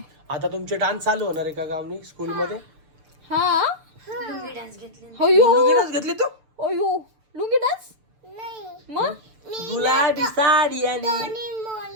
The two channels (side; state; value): left; late; 6.8 ms